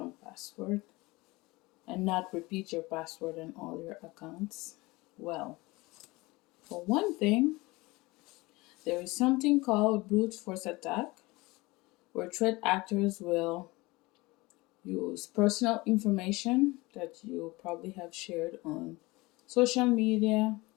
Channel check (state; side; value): quieter; right; 22.4 dB